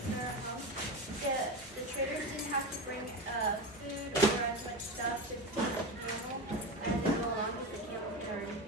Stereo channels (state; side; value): normal; both; correlation 0.21